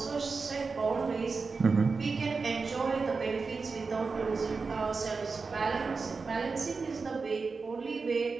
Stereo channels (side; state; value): left; quieter; 4.5 dB